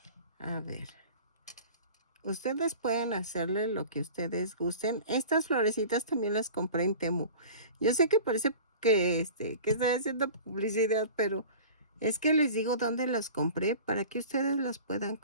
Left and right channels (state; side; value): inverted; both; correlation -0.39